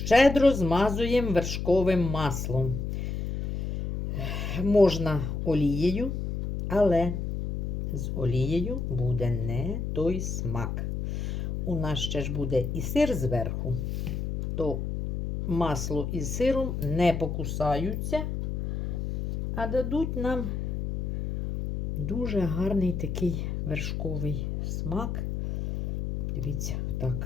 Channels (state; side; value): noise; left; hum, 2 dB below the sound